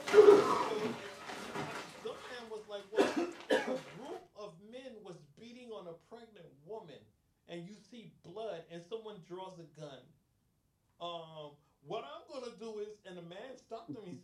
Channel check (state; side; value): identical; both; correlation 1.00